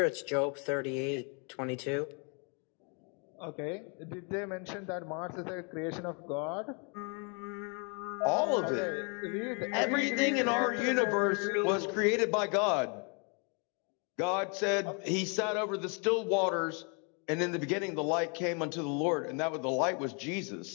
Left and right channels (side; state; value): right; quieter; 36.4 dB